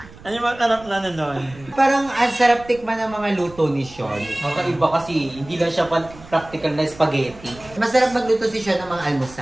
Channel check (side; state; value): right; noise; rumble, 20 dB below the sound